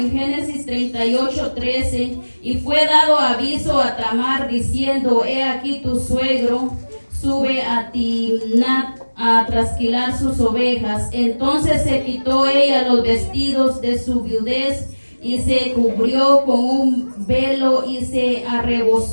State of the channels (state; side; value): inverted; both; correlation -1.00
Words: Génesis 38, 13, y fue dado aviso a Tamar diciendo, he aquí tu suegro sube a Timnat a trasquilar sus ovejas. Entonces se quitó ella los vestidos de su viudez y se cubrió con un velo y se